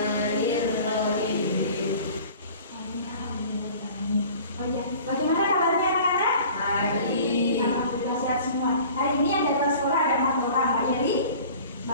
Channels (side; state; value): both; inverted; correlation -0.45